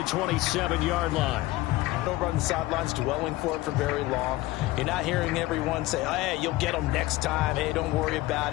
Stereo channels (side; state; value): right; quieter; 17.9 dB